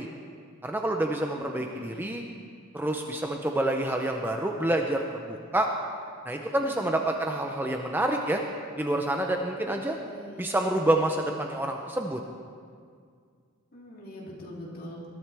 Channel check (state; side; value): normal; both; correlation 0.65